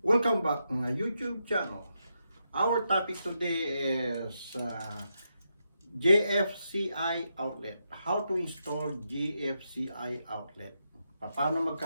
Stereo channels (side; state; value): both; inverted; correlation -0.84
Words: welcome back to my YouTube channel. Our topic today is GFCI outlet. How to install GFCI outlet. Paano